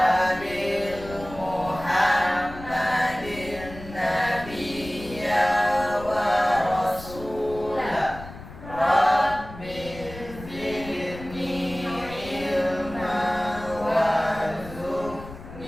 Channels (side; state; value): left; noise; rumble, 14 dB below the sound